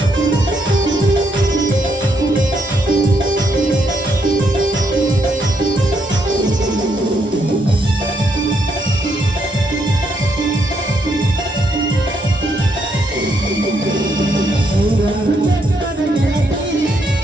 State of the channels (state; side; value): normal; both; correlation 0.76